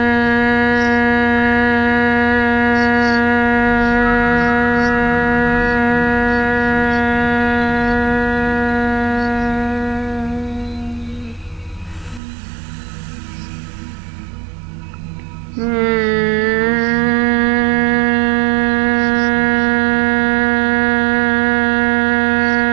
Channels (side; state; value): left; drops out; at 12.2 s